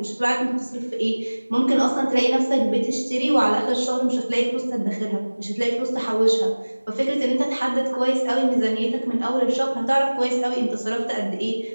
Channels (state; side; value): inverted; both; correlation -1.00